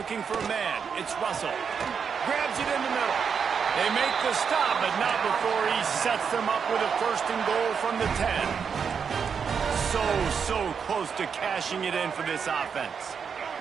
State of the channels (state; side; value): quieter; left; 6.5 dB